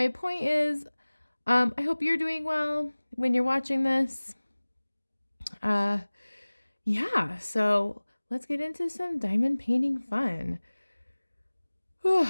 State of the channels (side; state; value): both; inverted; correlation -1.00